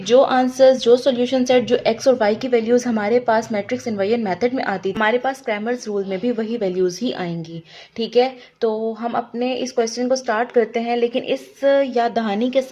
जो आंसर्स, जो सॉल्यूशन सेट, जो एक्स और वाई की वैल्यूज़ हमारे पास मैट्रिक्स इन्वर्जन मेथड में आती, हमारे पास क्रैमर्स रूल में भी वही वैल्यूज़ ही आएंगी। ठीक है, तो हम अपने इस क्वेश्चन को स्टार्ट करते हैं, लेकिन इस याद दहानी के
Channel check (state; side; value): identical; both; correlation 1.00